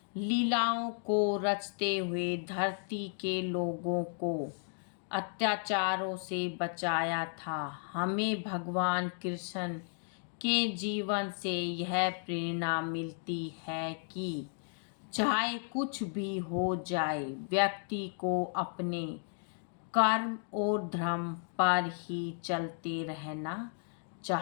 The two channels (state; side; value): silent; right; 55 dB below the other